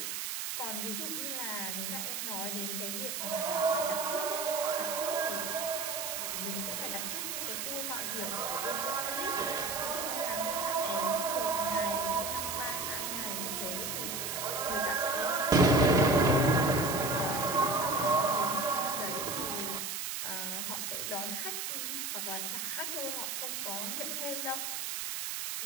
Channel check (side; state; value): right; noise; hiss, 3 dB below the sound